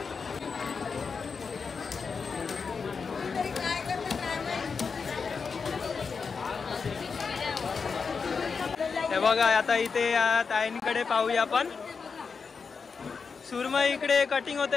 हे बघा आता इथे या ताईंकडे पाहूया आपण. सुरमई इकडे कटिंग होत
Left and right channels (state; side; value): quieter; right; 5.3 dB